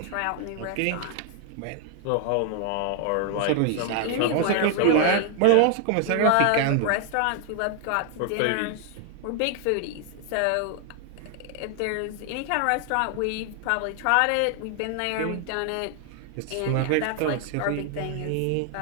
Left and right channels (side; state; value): both; different; correlation 0.00